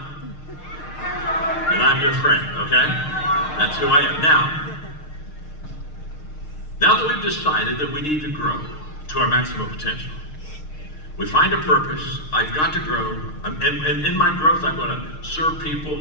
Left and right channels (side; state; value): right; late; 6.5 ms